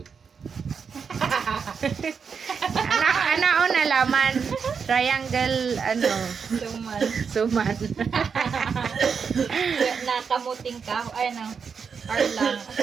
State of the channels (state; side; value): quieter; left; 6.1 dB